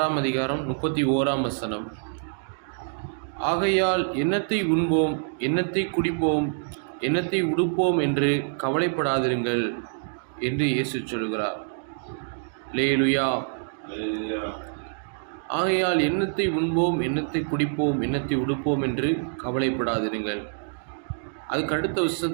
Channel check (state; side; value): silent; left; digital silence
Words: அதிகாரம் 31ஆம் வசனம். ஆகையால் என்னத்தை உண்போம், என்னத்தை குடிப்போம், என்னத்தை உடுப்போம் என்று கவலைப்படாதிருங்கள் என்று இயேசு சொல்கிறார். அல்லேலூயா. ஆகையால் என்னத்தை உண்போம், என்னத்தை குடிப்போம், என்னத்தை உடுப்போம் என்று கவலைப்படாதிருங்கள். அதுக்கு அடுத்த